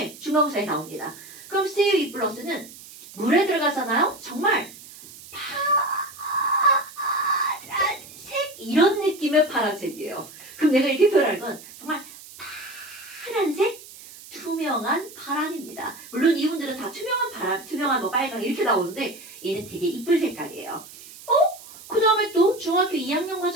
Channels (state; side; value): noise; right; hiss, 18 dB below the sound